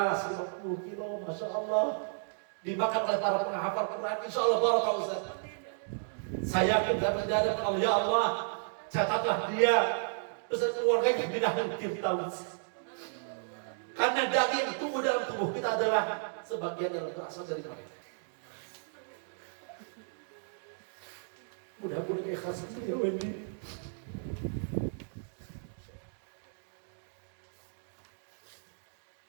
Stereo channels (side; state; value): left; silent; digital silence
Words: 50 kilo, masya Allah, dimakan oleh para penghafal Quran. Insya Allah barakah Ustaz. Saya yakin dapat dari Allah, ya Allah, catatlah dia beserta keluarganya di dalam Firdaus. Karena daging yang tumbuh dalam tubuh kita adalah sebagian yang berasal dari mereka. Mudah-mudahan ikhlas ya Wendy.